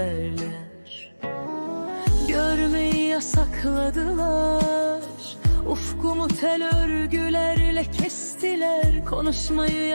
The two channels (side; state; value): both; inverted; correlation -1.00